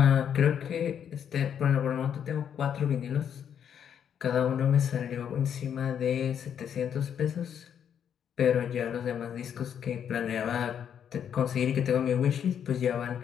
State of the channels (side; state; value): right; quieter; 8.6 dB